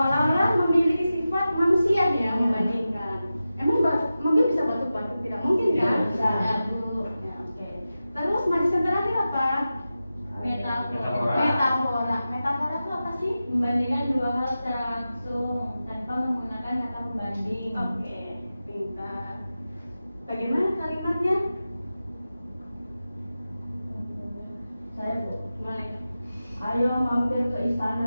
memiliki sifat manusia ya membandingkan. Emang mobil bisa batuk-batuk? Tidak mungkin kan? Bisa. Bu. Ya, oke. Terus majas yang terakhir apa? Metafora. Metafora itu apa sih? Membandingkan dua hal secara langsung tanpa menggunakan kata pembanding. Oke, pintar. Bagaimana kalimatnya? Saya, Bu. Boleh. Ayo mampir ke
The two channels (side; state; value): both; inverted; correlation -0.93